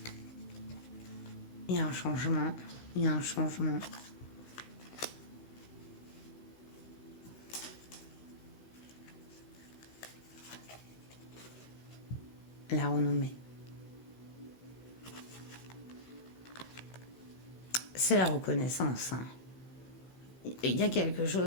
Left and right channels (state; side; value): late; right; 16 ms